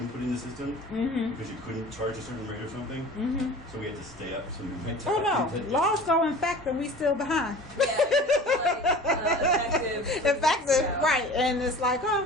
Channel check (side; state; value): both; normal; correlation 0.41